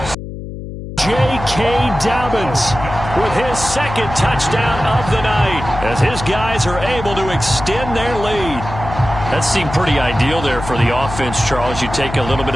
J.K. Dobbins with his 2nd touchdown of the night as his guys are able to extend their lead. That seemed pretty ideal there for the offense, Charles. You take a little bit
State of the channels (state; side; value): noise; left; hum, 10 dB below the sound